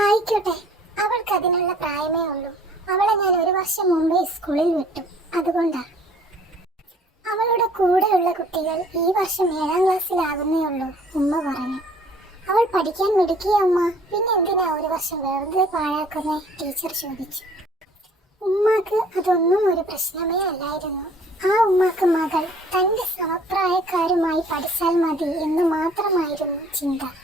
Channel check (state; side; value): normal; both; correlation 0.54